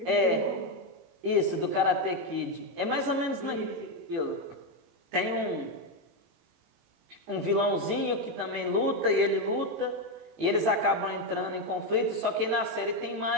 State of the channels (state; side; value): late; left; 18 ms